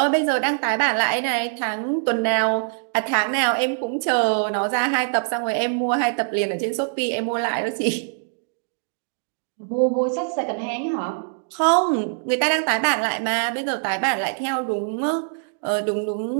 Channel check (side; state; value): left; silent; digital silence